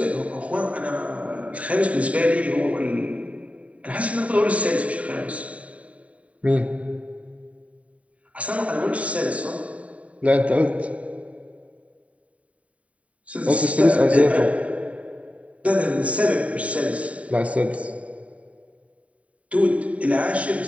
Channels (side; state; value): left; late; 0.067 ms